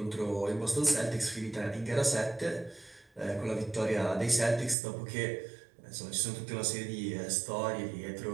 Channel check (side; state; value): left; drops out; at 4.8 s